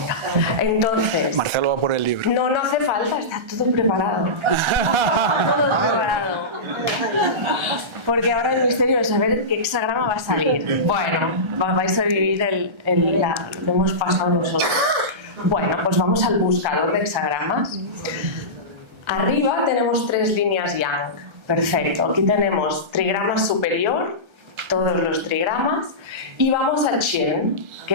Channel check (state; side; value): late; left; 1.3 ms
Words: Entonces. Marcelo va por el libro. No hace falta, está todo preparado. Todo preparado. Porque ahora el misterio es saber qué hexagrama va a salir. Bueno, vais a vivir lo que hemos pasado nosotros. Bueno, pues vamos al buscador de hexagramas. Arriba tenemos 3 líneas yang. Perfecto. Aquí tenemos trigrama superior, todos los trigramas, y vamos al Chen,